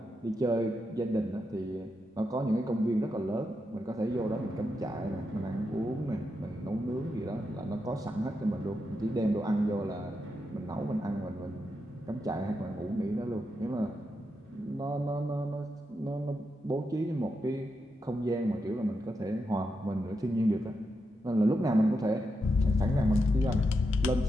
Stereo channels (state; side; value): normal; both; correlation 0.85